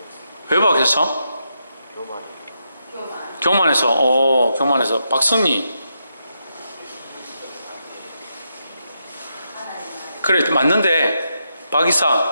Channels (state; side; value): inverted; both; correlation -0.83